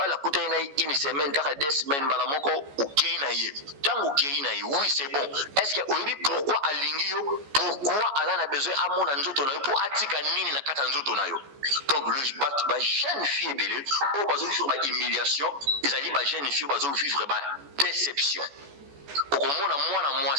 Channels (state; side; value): late; left; 14 ms